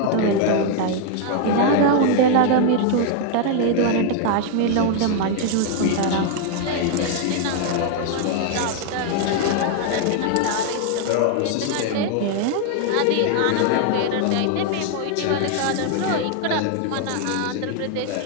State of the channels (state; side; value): different; both; correlation 0.00